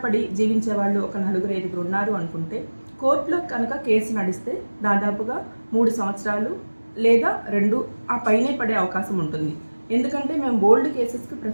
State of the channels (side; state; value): both; inverted; correlation -1.00